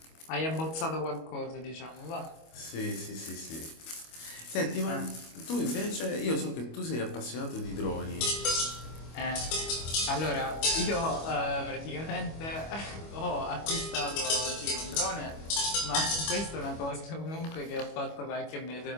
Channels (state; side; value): late; right; 25 ms